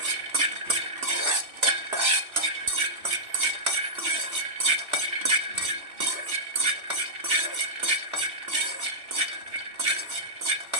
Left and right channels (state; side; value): late; left; 2.7 ms